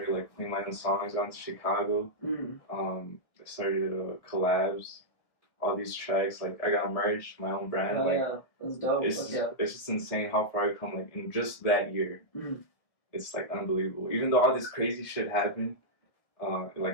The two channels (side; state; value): right; late; 1.3 ms